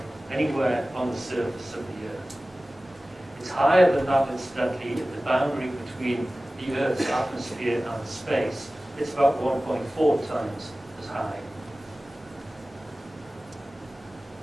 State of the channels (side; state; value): both; normal; correlation 0.97